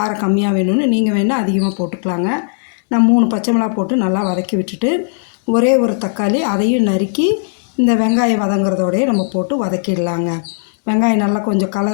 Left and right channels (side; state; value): right; silent; digital silence